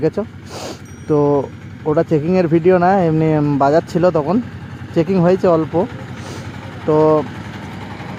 তো। ওটা চেকিংয়ের ভিডিও না, এমনি বাজার ছিল, তখন চেকিং হয়েছে অল্প। তো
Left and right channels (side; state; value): both; identical; correlation 1.00